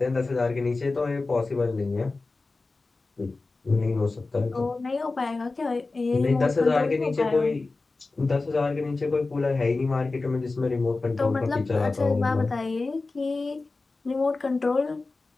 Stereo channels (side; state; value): right; quieter; 3.6 dB